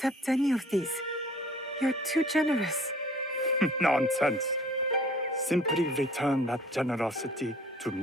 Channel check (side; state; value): both; normal; correlation 0.51